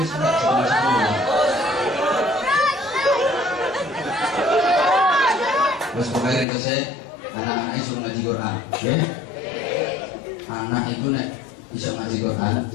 sudah sama sekali. Terus pokoknya itu saya anak-anaknya suruh ngaji Quran, ya? Anak itu nek bisa ngaji Quran,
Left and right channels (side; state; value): right; drops out; at 6.5 s